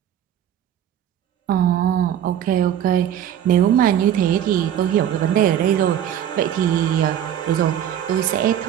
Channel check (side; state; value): left; quieter; 10.1 dB